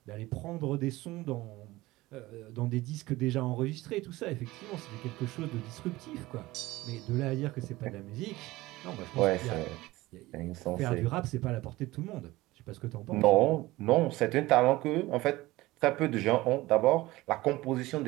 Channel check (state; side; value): quieter; left; 18.9 dB